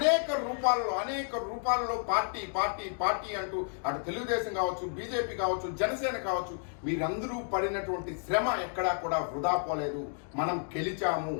రూపాలలో పార్టీ అంటూ అటు తెలుగుదేశం కావచ్చు, బీజేపీ కావచ్చు, జనసేన కావచ్చు, మీరందరూ పడినటువంటి శ్రమ ఎక్కడా కూడా వృధా పోలేదు. మనం గెలిచాము.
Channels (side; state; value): right; silent; 55 dB below the other